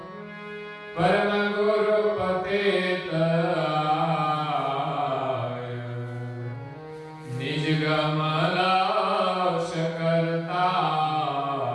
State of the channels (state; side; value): identical; both; correlation 1.00